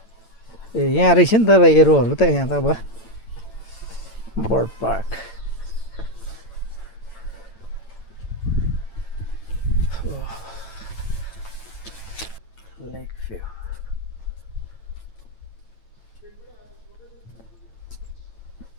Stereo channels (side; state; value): right; late; 8.9 ms